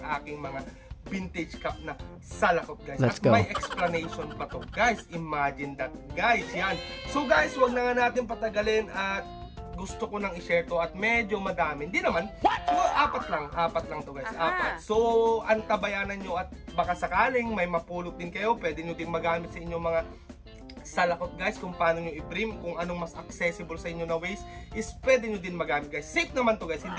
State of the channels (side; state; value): both; identical; correlation 1.00